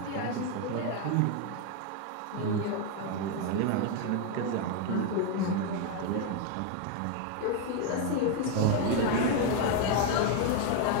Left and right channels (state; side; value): different; both; correlation 0.01